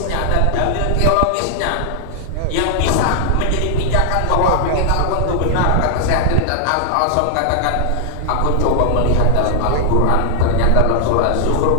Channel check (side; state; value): both; different; correlation 0.00